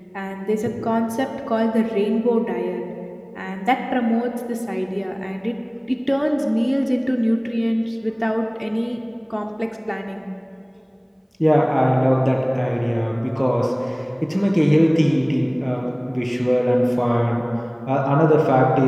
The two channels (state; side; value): identical; both; correlation 1.00